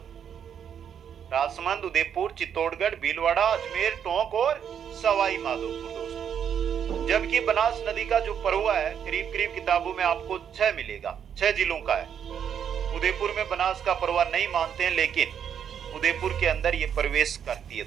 राजसमंद, उदयपुर, चित्तौड़गढ़, भीलवाड़ा, अजमेर, टोंक और सवाई माधोपुर दोस्तों। जबकि बनास नदी का जो प्रवाह है करीब करीब किताबों में आपको 6 मिलेगा, 6 जिलों का है। उदयपुर में बनास का प्रवाह नहीं मानते हैं, लेकिन उदयपुर के अंदर ये प्रवेश करती है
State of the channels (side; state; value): left; quieter; 8.3 dB